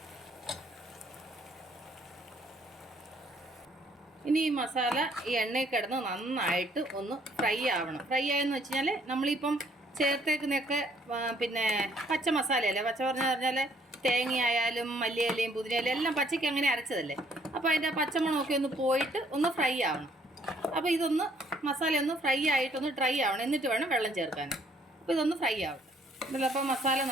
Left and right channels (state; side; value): normal; both; correlation 0.64